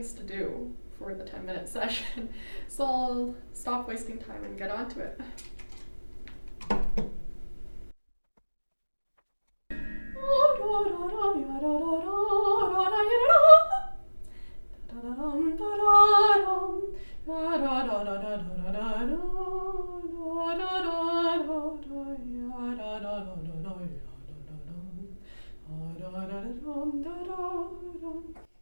to do for the 10-minute session. So I'll stop wasting time and get on to it.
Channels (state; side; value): inverted; both; correlation -1.00